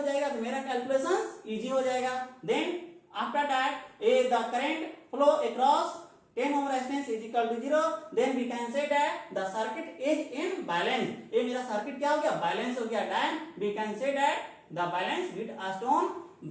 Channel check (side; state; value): both; identical; correlation 1.00